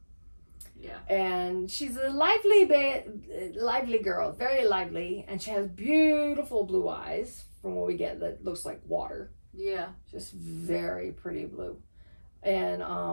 Yeah. And she's a lively girl, very lively, and she has beautiful blue eyes from what we get that looks like water. Yeah. Just very pretty blue. And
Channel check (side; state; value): both; inverted; correlation -1.00